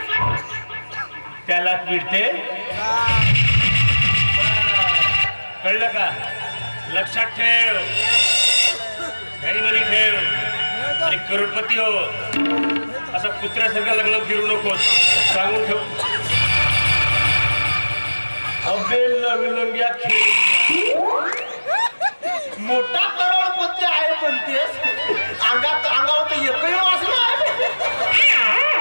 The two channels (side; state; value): both; inverted; correlation -1.00